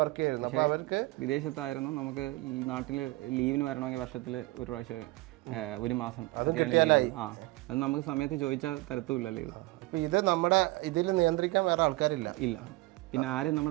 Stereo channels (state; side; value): quieter; left; 21.2 dB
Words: വർക്ക് ചെയ്യായിരുന്നു. അപ്പോൾ അവർക്ക് വിദേശത്തായിരുന്നു. നമുക്ക് നാട്ടിൽ ലീവിന് വരണമെങ്കിൽ വർഷത്തിൽ ഒരു പ്രാവശ്യം 1 മാസം അത് കിട്ടിയാലായി. അത് നമുക്ക് സമയത്ത് ചോദിച്ചാൽ തരത്തുമില്ല ലീവ്. അപ്പോൾ ഇത് നമ്മുടെ ഇതിൽ നിയന്ത്രിക്കാൻ വേറെ ആൾക്കാരില്ല. ഇല്ല, പിന്നെ ആരും